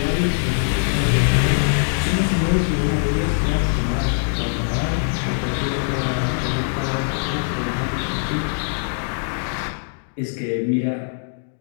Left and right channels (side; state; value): right; silent; digital silence